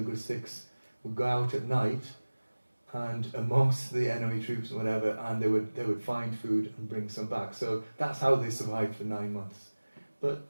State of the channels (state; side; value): inverted; both; correlation -1.00